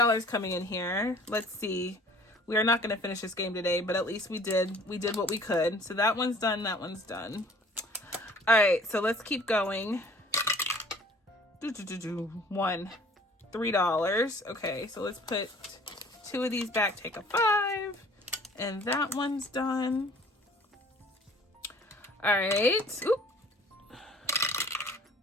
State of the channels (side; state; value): both; normal; correlation 0.51